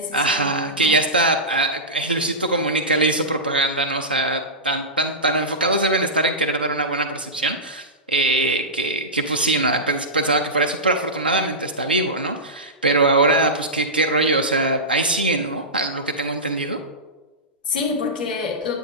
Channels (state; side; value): normal; both; correlation -0.15